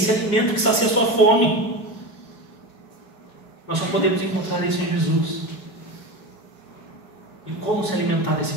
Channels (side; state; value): right; late; 4.6 ms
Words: alimento que sacia a sua fome. Nós só podemos encontrar isso em Jesus. E como se alimentar desse